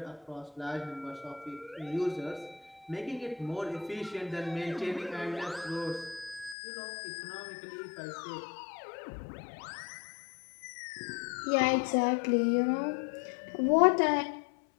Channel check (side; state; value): right; drops out; at 6.6 s